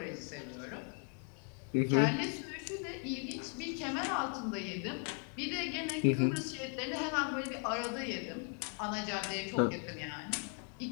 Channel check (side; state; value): right; quieter; 39.7 dB